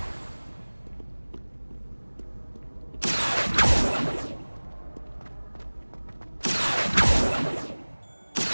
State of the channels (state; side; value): inverted; both; correlation -1.00